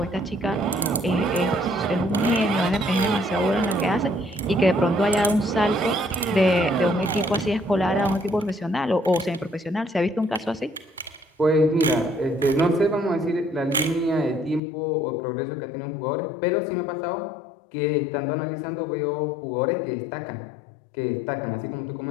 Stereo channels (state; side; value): drops out; right; at 14.6 s